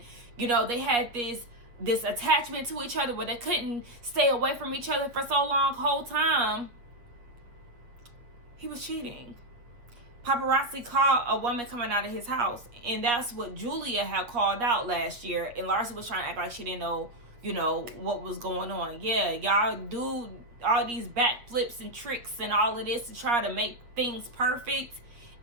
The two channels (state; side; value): late; left; 8.2 ms